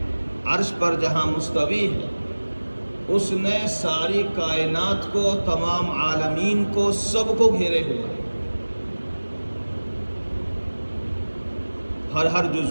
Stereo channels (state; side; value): inverted; both; correlation -1.00